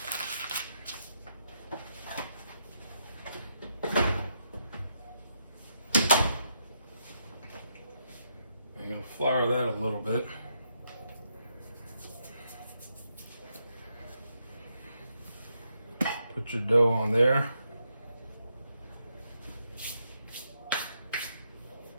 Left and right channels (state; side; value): inverted; both; correlation -0.79